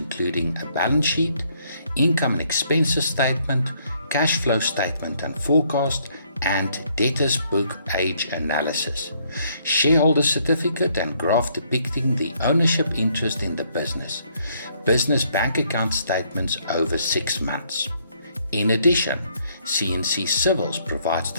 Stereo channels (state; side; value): inverted; both; correlation -0.68